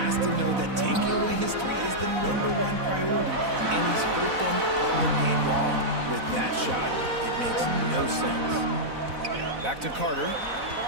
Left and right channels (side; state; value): left; late; 4.0 ms